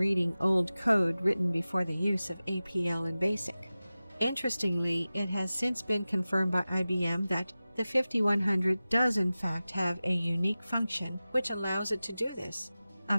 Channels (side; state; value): both; inverted; correlation -0.96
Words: old code written before the use of APL and BASIC. Interestingly, it has since been confirmed by IBM that the 5100 does in fact have a unique function which allows it to do this, a